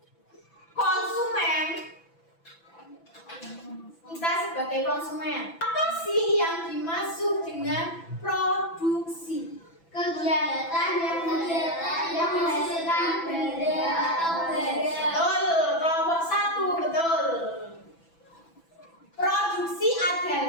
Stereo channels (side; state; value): right; late; 6.0 ms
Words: konsumen? Kita sebagai konsumen, apa sih yang dimaksud dengan produksi? Kegiatan yang menghasilkan benda atau barang. Betul, kelompok 1, betul. Produksi